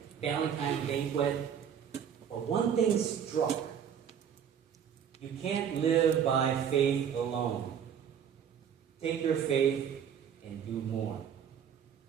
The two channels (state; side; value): quieter; left; 8.2 dB